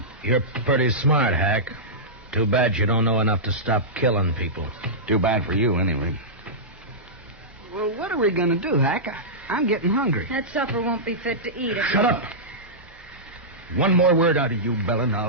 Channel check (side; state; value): both; normal; correlation -0.14